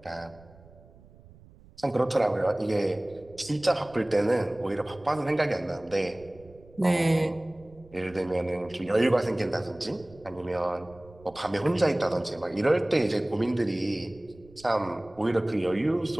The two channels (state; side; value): noise; right; rumble, 24 dB below the sound